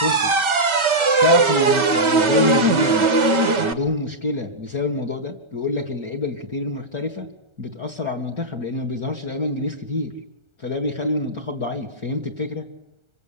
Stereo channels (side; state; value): left; late; 1.4 ms